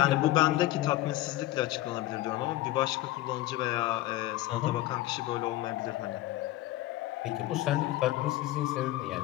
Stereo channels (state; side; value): quieter; right; 16.2 dB